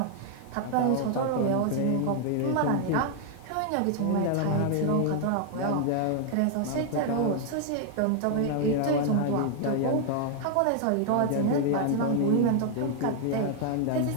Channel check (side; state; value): both; different; correlation 0.00